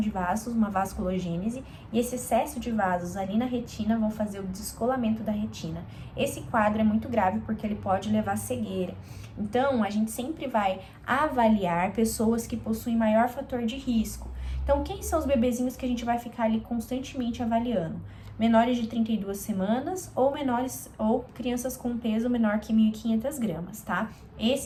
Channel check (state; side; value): identical; both; correlation 1.00